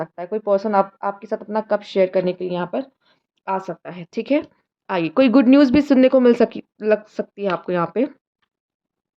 है, कोई पर्सन आपके साथ अपना कप शेयर करने के लिए यहाँ पर आ सकता है, ठीक है? आइए, कोई गुड न्यूज़ भी सुनने को लग सकती है आपको यहाँ पे,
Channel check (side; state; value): both; identical; correlation 1.00